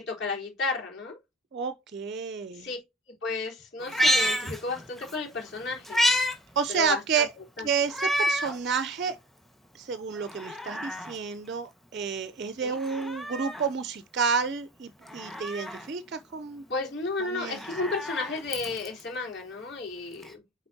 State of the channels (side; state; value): both; normal; correlation 0.39